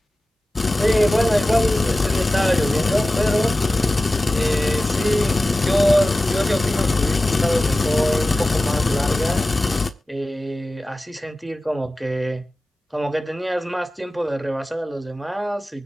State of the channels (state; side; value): normal; both; correlation 0.95